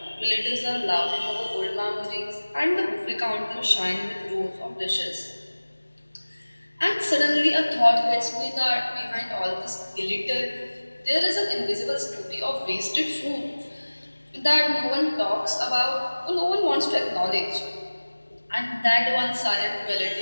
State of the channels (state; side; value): inverted; both; correlation -1.00